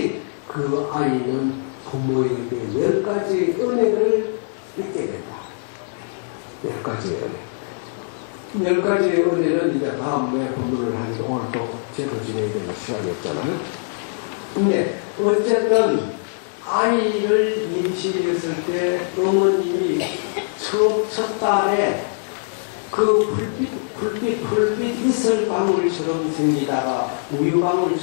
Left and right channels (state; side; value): silent; right; digital silence